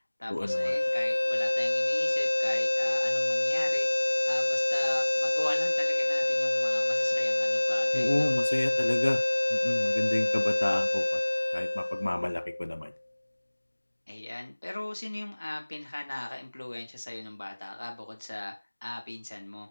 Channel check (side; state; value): both; inverted; correlation -1.00